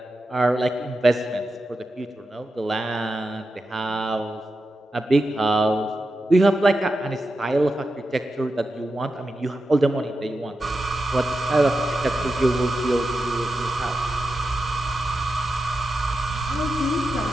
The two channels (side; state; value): both; normal; correlation 0.89